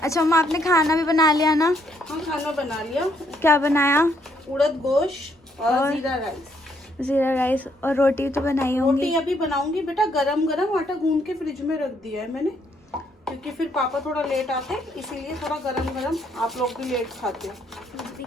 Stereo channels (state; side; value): normal; both; correlation 0.71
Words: मम्मा आपने खाना भी बना लिया ना? हाँ खाना बना लिया। क्या बनाया? उड़द गोश्त और जीरा राइस। जीरा राइस और रोटी तो बनाई होंगी। रोटी अभी बनाऊंगी बेटा, गरम गरम आटा गूंद के फ्रिज में रख दिया है मैंने, क्योंकि फिर पापा थोड़ा लेट आते हैं, इसीलिए थोड़ा गरम गरम। आप लोग भी लेट खाते हो